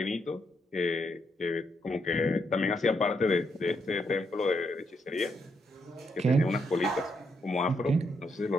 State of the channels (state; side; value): normal; both; correlation 0.78